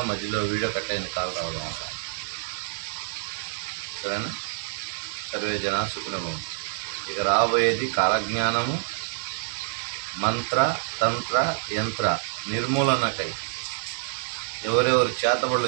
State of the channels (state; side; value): silent; left; digital silence